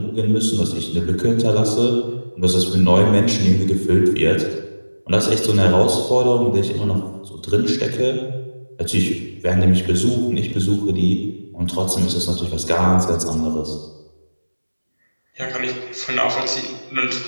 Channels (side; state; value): both; inverted; correlation -1.00